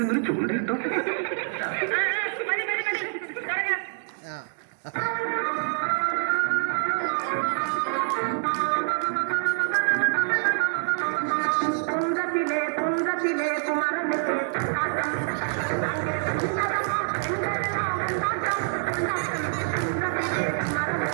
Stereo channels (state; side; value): silent; left; digital silence